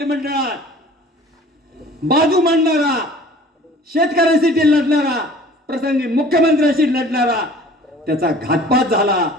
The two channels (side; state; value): both; normal; correlation 0.48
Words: बाजू मांडणारा, शेतकऱ्यांसाठी लढणारा, प्रसंगी मुख्यमंत्र्यांशी लढणारा, त्याचा घातपात झाला.